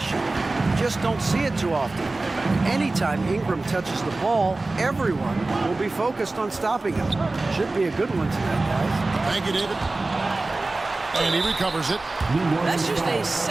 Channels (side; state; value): left; quieter; 3.2 dB